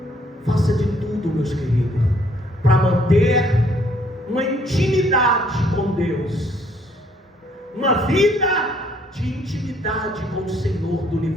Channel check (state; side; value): normal; both; correlation 0.65